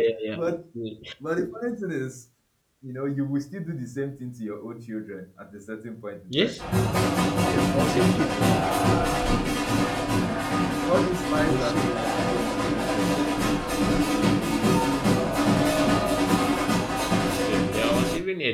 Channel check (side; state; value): both; identical; correlation 1.00